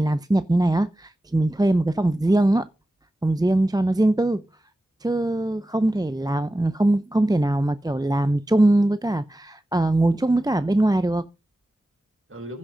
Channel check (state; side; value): normal; both; correlation 0.94